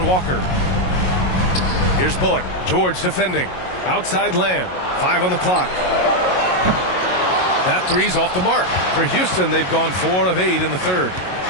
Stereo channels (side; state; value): right; late; 22 ms